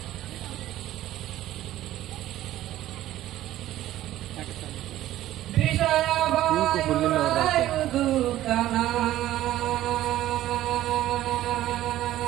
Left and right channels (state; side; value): quieter; left; 14.0 dB